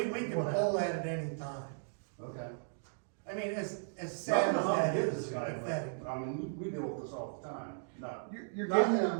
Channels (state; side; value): silent; left; digital silence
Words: can pull that at any time. Okay. I mean, as sad as that Nothing is, this guy, pathetic. but, I mean, we deal with this all the time, not. You're Not getting,